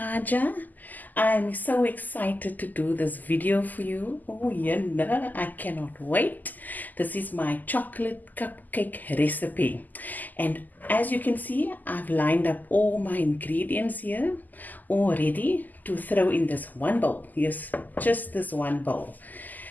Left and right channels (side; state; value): right; late; 0.084 ms